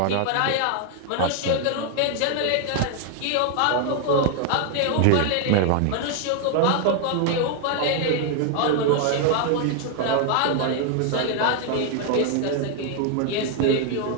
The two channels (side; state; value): both; different; correlation 0.00